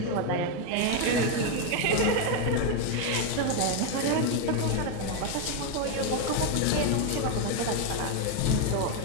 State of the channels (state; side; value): different; both; correlation 0.01